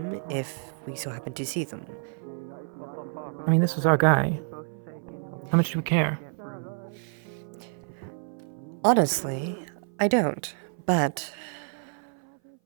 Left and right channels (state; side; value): silent; left; 58 dB below the other